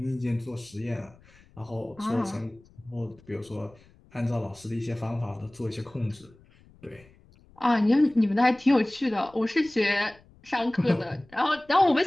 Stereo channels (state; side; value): noise; left; rumble, 27 dB below the sound